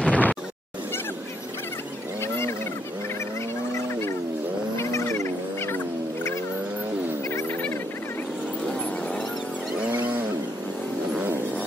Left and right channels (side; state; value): both; normal; correlation 0.74